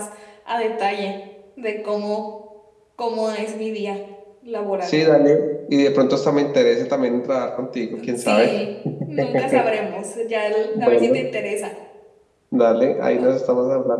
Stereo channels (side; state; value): both; identical; correlation 1.00